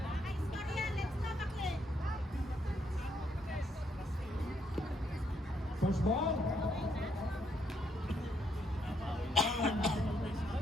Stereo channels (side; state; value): both; normal; correlation 0.75